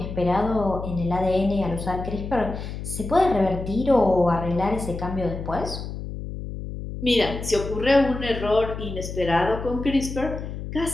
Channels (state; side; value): noise; left; hum, 8 dB below the sound